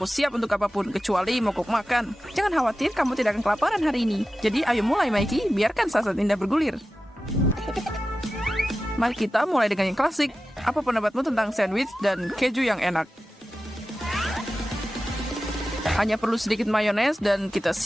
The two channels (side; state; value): both; normal; correlation 0.94